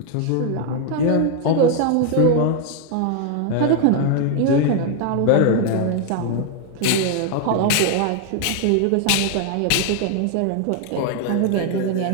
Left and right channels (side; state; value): both; different; correlation 0.01